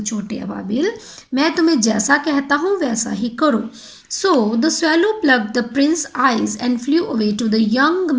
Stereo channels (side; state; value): both; identical; correlation 1.00